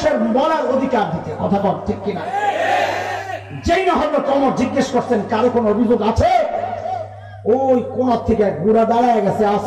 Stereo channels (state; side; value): identical; both; correlation 1.00